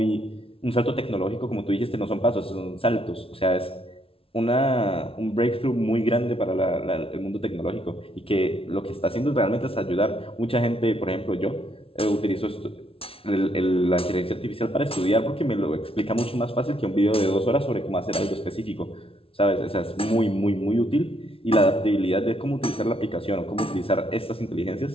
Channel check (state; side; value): late; right; 0.26 ms